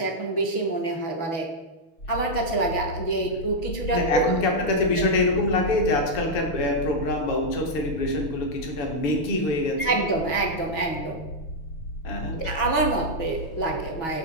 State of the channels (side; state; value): right; late; 6.2 ms